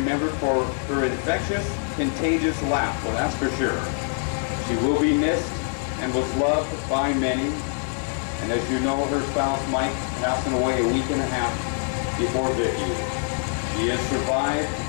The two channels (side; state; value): right; silent; 57 dB below the other